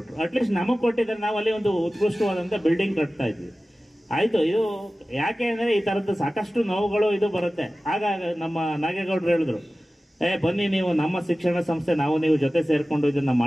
ಅಟ್ಲೀಸ್ಟ್ ನಮಗೆ ಕೊಟ್ಟಿದ್ರೆ ನಾವು ಅಲ್ಲಿ ಒಂದು ಉತ್ಕೃಷ್ಟವಾದಂಥ ಬಿಲ್ಡಿಂಗ್ ಕಟ್ತಾ ಇದ್ವಿ. ಆಯಿತು, ಇದು ಯಾಕೆ ಅಂದರೆ ಈ ಥರದ್ದು ಸಾಕಷ್ಟು ನೋವುಗಳು ಇದು ಬರುತ್ತೆ. ಆಗ ನಮ್ಮ ನಾಗೇಗೌಡರು ಹೇಳಿದ್ರು, ಬನ್ನಿ ನೀವು ನಮ್ಮ ಶಿಕ್ಷಣ ಸಂಸ್ಥೆ, ನಾವು ನೀವು ಜೊತೆ ಸೇರಿಕೊಂಡು ಇದನ್ನು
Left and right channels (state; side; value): normal; both; correlation 0.96